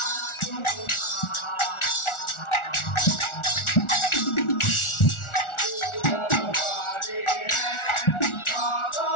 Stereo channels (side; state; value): right; late; 1.4 ms